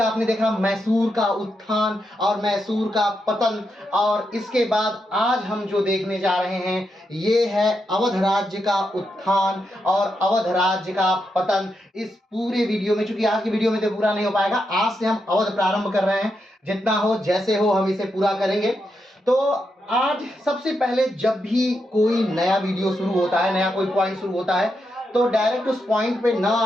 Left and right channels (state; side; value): normal; both; correlation 0.84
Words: देखा मैसूर का उत्थान और मैसूर का पतन, और इसके बाद आज हम जो देखने जा रहे हैं ये है अवध राज्य का उत्थान और अवध राज्य का पतन। इस पूरे वीडियो में, चूंकि आज की वीडियो में तो पूरा नहीं हो पाएगा, आज से हम अवध प्रारंभ कर रहे हैं। जितना हो जैसे हो हम इसे पूरा करेंगे। तो आज सबसे पहले जब भी कोई नया वीडियो शुरू होता है, नया कोई पॉइंट शुरू होता है, तो डायरेक्ट उस पॉइंट पे ना